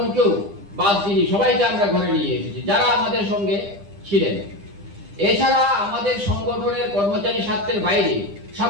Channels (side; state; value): left; late; 10 ms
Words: বাদ দিইনি, সবাইকে আমরা ঘরে নিয়ে এসেছি যারা আমাদের সঙ্গে ছিলেন। এছাড়া আমাদের সংগঠনের কর্মচারী স্বার্থের বাইরে